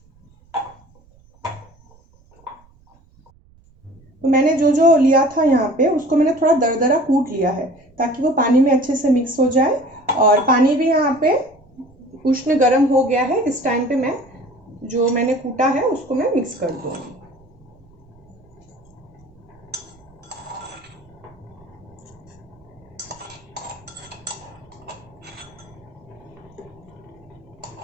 तो मैंने जो जो लिया था यहाँ पे उसको मैंने थोड़ा दरदरा कूट लिया है ताकि वो पानी में अच्छे से मिक्स हो जाए। और पानी भी यहाँ पे उष्ण गर्म हो गया है। इस टाइम पे मैं जो मैंने कूटा है उसको मैं मिक्स कर दूंगी।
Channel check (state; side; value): noise; right; rumble, 29 dB below the sound